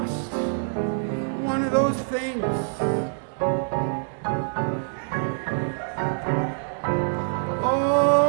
one of those things.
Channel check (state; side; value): silent; left; digital silence